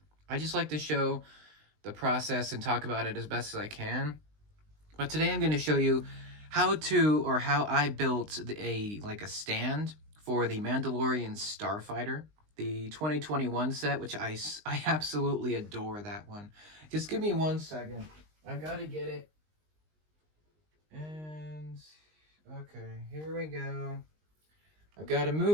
I just like to show the process and talk about it as best as I can. But today I'm going to show you how I built a stand for the Mandalorian Starfighter, the 2021 set, which I absolutely adore that one. Just give me 1 second. I gotta get it. And okay, here we go. I've got to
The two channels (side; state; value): left; late; 19 ms